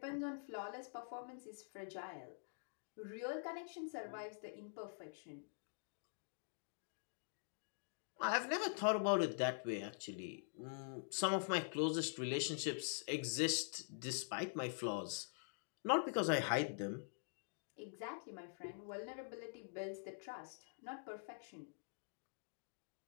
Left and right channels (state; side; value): silent; right; digital silence